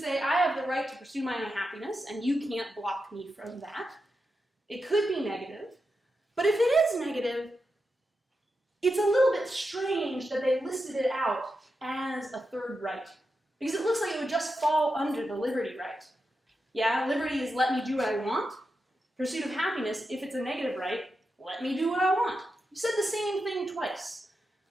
I have the right to pursue my own happiness, and you can't block me from that. It could be negative. But if it is negative, it's a little bit strange that they listed it out as a third right. Because it looks like it would just fall under the liberty right. Yeah, liberty is let me do what I want. Pursuit of happiness, if it's a negative right, let me do what I want. You said the same thing twice.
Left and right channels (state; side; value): normal; both; correlation 0.88